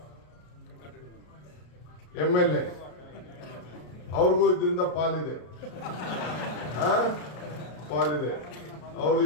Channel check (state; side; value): late; right; 33 ms